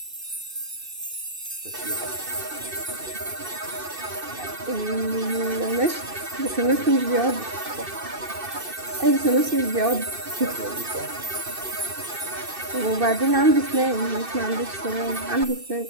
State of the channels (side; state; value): left; late; 2.6 ms